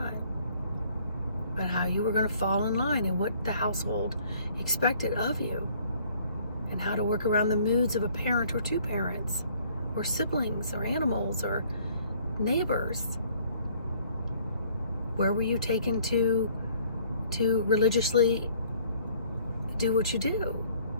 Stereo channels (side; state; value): both; inverted; correlation -0.58